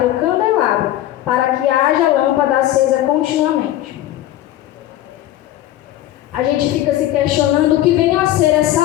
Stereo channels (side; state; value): right; quieter; 13.8 dB